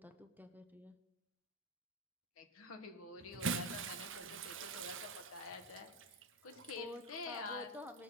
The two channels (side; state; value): both; normal; correlation 0.13